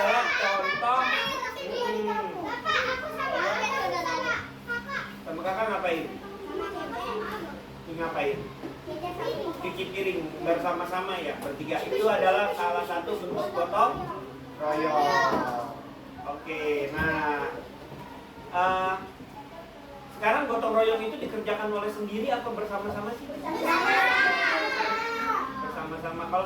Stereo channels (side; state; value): both; identical; correlation 1.00